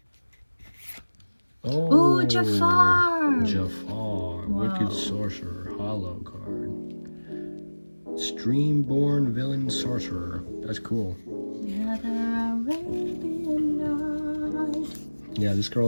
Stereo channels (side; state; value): both; inverted; correlation -1.00